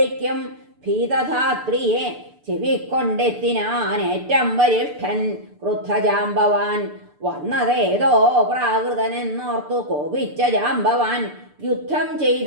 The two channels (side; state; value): left; late; 6.8 ms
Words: ഭീതധാത്രിയെ ചെവിക്കൊണ്ടെത്തിനാൻ ഏറ്റം വരിഷ്ഠൻ ക്രുദ്ധജാംബവാൻ. വന്നതേതോ പ്രാകൃതനെന്നോർത്തു കോപിച്ച ജാംബവാൻ, യുദ്ധം